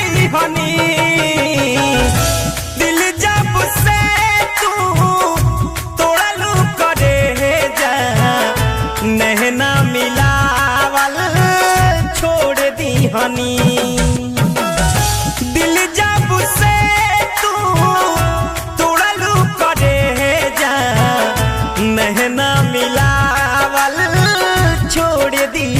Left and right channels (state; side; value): identical; both; correlation 1.00